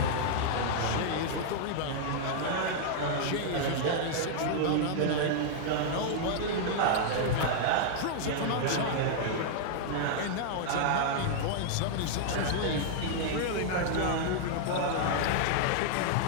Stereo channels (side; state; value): both; different; correlation -0.01